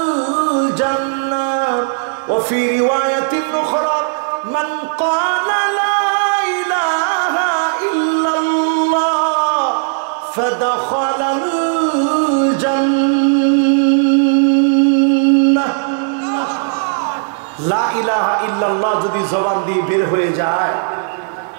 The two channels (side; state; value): left; silent; digital silence